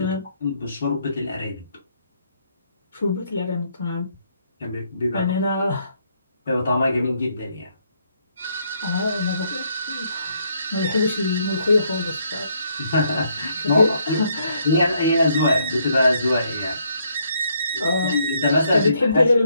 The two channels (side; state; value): both; inverted; correlation -0.71